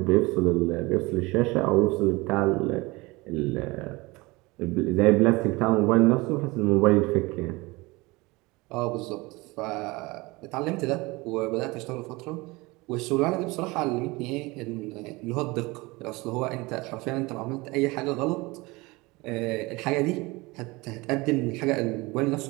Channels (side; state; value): left; quieter; 23.3 dB